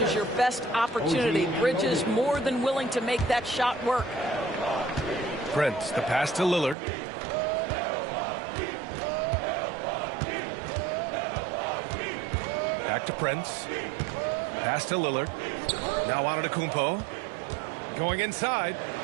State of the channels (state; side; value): drops out; left; at 6.8 s